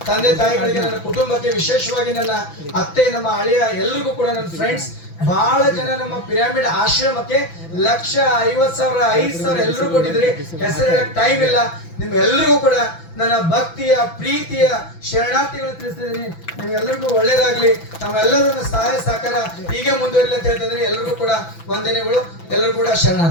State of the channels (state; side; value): late; right; 6.0 ms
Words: ತಂದೆ ತಾಯಿಗಳಿಗೆ, ನನ್ನ ಕುಟುಂಬಕ್ಕೆ, ವಿಶೇಷವಾಗಿ ನನ್ನ ಅತ್ತೆ, ನಮ್ಮ ಅಳಿಯ, ಎಲ್ರಿಗೂ ಕೂಡ ನನ್ನ ಫ್ರೆಂಡ್ಸ್ ಬಹಳ ಜನ ನಮ್ಮ ಪಿರಾಮಿಡ್ ಆಶ್ರಮಕ್ಕೆ 1,50,000 5,000 ಎಲ್ಲರೂ ಕೊಟ್ಟಿದ್ರಿ. ಹೆಸರು ಹೇಳಕ್ ಟೈಮ್ ಇಲ್ಲ. ನಿಮ್ ಎಲ್ರಿಗೂ ಕೂಡ ನನ್ನ ಭಕ್ತಿಯ ಪ್ರೀತಿಯ ಶರಣಾರ್ಥಿಗಳು ತಿಳಿಸ್ತಿದ್ದೀನಿ. ನಿಮ್ಗೆಲ್ಲರಿಗೂ ಒಳ್ಳೇದಾಗ್ಲಿ. ತಮ್ಮೆಲ್ಲರೂ ನನ್ನ ಸಹಾಯ ಸಹಕಾರ ಹೀಗೆ ಮುಂದುವರಿಲಿ ಅಂತ ಹೇಳ್ತಿದ್ದೀನಿ. ಎಲ್ರಿಗೂ ಕೂಡ ವಂದನೆಗಳು. ಎಲ್ಲರೂ ಕೂಡ